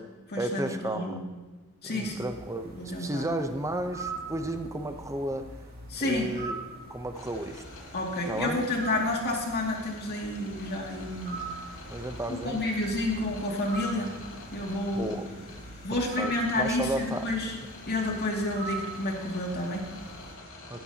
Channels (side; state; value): both; normal; correlation 0.41